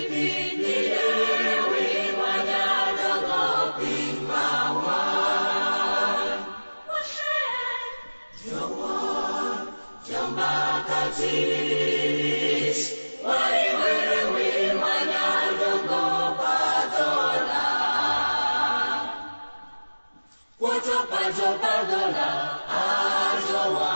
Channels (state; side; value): inverted; both; correlation -1.00